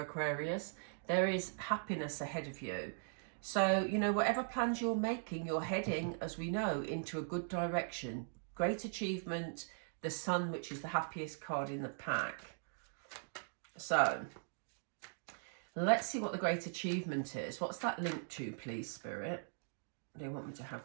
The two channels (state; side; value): silent; left; digital silence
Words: Aquarius. There is happiness ahead of you. So, you know, whatever plans you're making, you're heading, as we know, into a good direction. Great achievement, the Sun, which is the happiest card in the pack. So, let's see what the great achievement is. What's that linked to, please, Spirit? They want me to